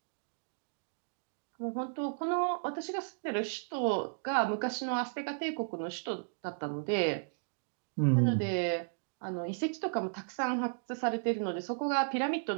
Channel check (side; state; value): left; silent; digital silence